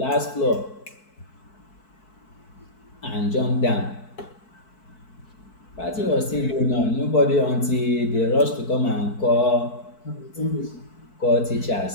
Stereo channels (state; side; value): late; right; 4.6 ms